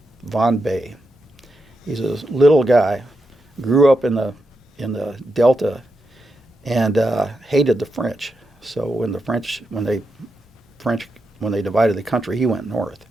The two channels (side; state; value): both; normal; correlation 0.86